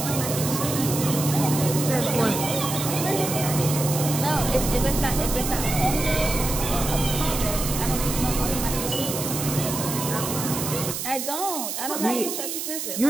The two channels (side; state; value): right; noise; hiss, 4 dB below the sound